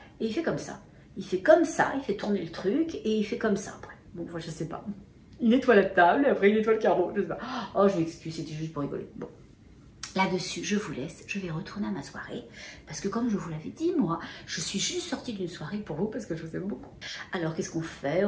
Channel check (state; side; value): identical; both; correlation 1.00